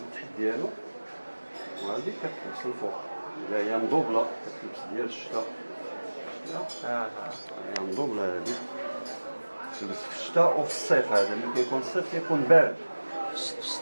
التحت ديالو، وهذه كتلبس الفوق اللي هي مدوبله كتلبس ديال الشتاء. هي مدوبله هذه تلبس في الشتاء وفي الصيف. هذا ملي كيكون الصيف كيكون بارد في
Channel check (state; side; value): inverted; both; correlation -1.00